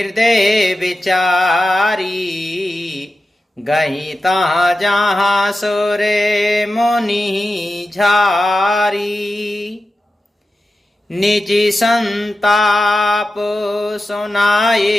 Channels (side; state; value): both; normal; correlation 0.93